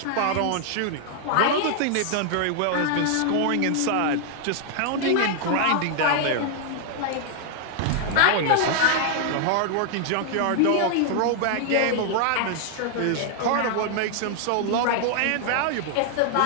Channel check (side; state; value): both; different; correlation 0.00